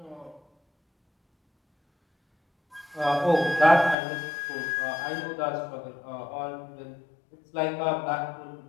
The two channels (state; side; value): drops out; right; at 4.0 s